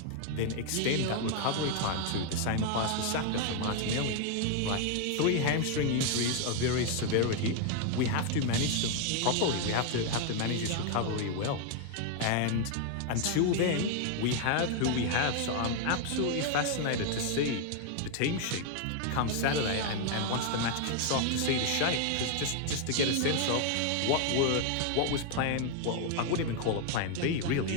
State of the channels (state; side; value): different; both; correlation 0.00